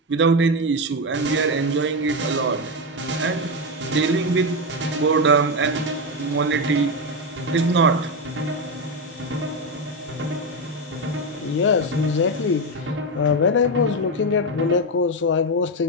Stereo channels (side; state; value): both; normal; correlation 0.11